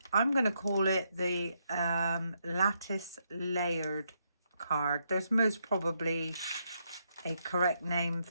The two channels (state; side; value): inverted; both; correlation -0.78